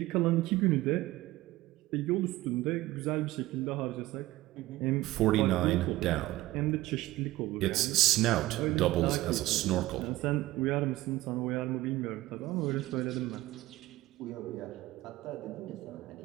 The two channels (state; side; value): quieter; left; 17.3 dB